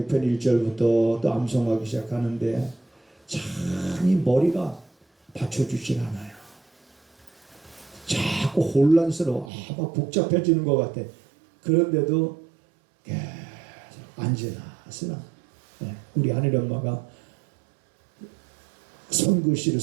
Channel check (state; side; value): drops out; left; at 9.5 s